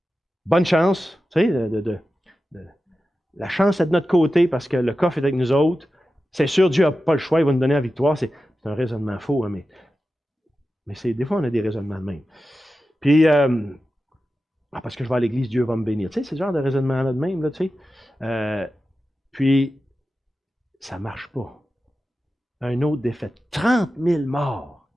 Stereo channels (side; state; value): both; normal; correlation 0.93